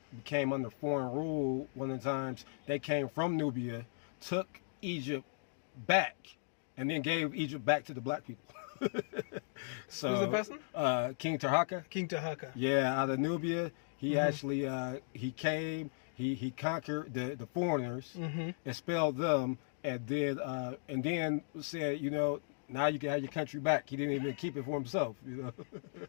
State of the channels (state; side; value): silent; right; digital silence